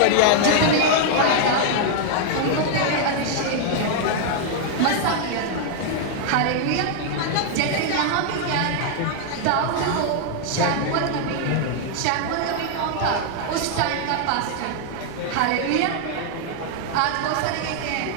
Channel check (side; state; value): both; different; correlation 0.00